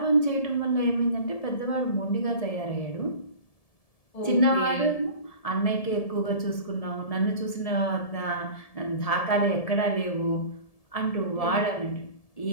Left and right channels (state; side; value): late; right; 1.7 ms